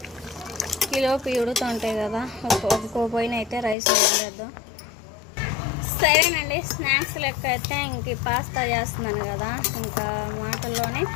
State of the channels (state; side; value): drops out; right; at 3.8 s